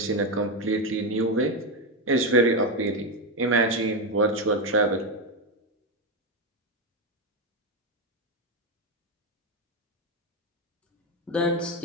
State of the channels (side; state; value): both; normal; correlation 0.08